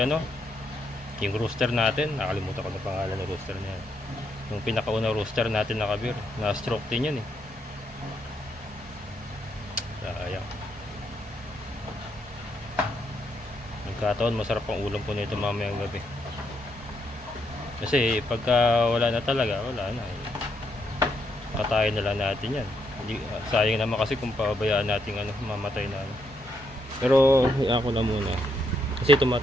yung rooster natin, nakalimutan ko na pangalan ng rooster niya. Yung pinakauna rooster natin na kabir, na stroke din yan Sayang. Nagkataon masarap ang ulam po nito mamayang gabi. Kasi pagka wala na talaga, wala na patayin na lang natin yan. Sayang naman kasi kung pabayaan natin mamatay na Pero ako na muna. Kasi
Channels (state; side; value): normal; both; correlation 0.77